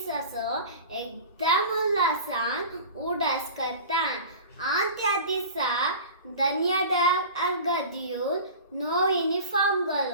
Egdamulasan, Udas Katan. Antia disa, Danyada Argadiul. No uniform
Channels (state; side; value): inverted; both; correlation -0.37